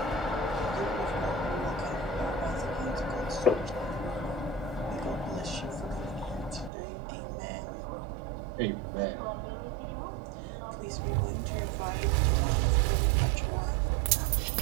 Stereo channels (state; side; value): drops out; left; at 6.7 s